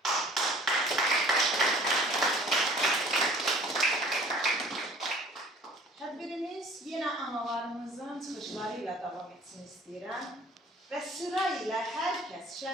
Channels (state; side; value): normal; both; correlation 0.50